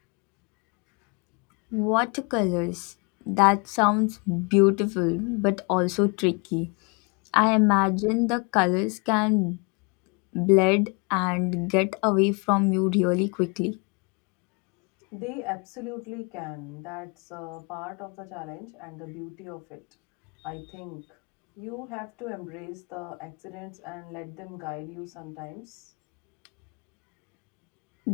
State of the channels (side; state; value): right; quieter; 32.2 dB